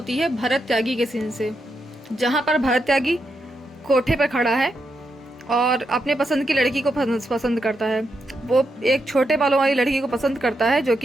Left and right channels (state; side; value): normal; both; correlation 0.83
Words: है भरत त्यागी के सीन से, जहाँ पर भरत त्यागी कोठे पर खड़ा है और अपने पसंद की लड़की को पसंद करता है। वो एक छोटे बालों वाली लड़की को पसंद करता है जो